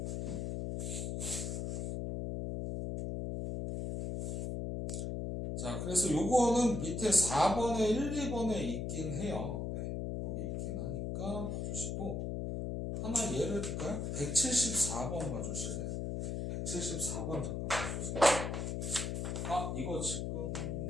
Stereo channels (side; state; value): left; noise; hum, 2 dB below the sound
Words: 자, 그래서 요거는 밑에 4번에 1, 2번에 있긴 해요. 네. 거기 있긴 하니까 봐주시고 하나 예를 들까요? 174번 봐주실래요? 174번 잠깐 봐주세요. 아, 이거 지금